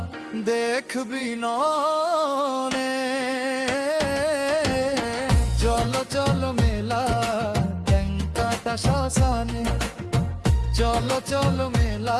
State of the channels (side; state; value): both; identical; correlation 1.00